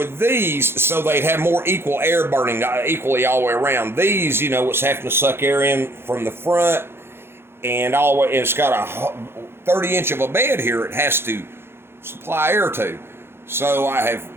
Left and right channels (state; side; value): late; left; 0.11 ms